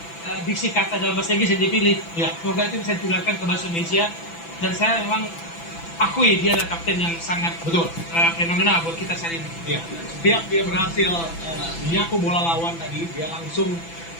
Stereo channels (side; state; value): right; late; 6.0 ms